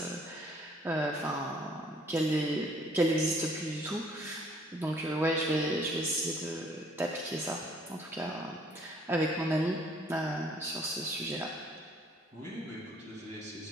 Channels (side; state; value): both; normal; correlation 0.60